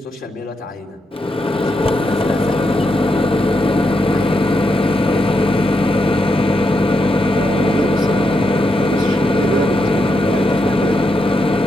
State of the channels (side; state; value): both; normal; correlation 0.83